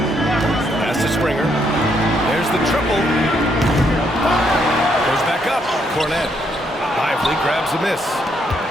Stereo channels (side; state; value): both; normal; correlation 0.74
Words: Pass to Springer. There's the triple. Goes back up. Cornet. Lively grabs a miss.